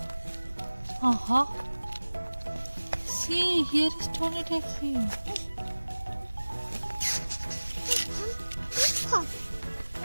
See, here is Tony Taxi.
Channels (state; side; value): inverted; both; correlation -1.00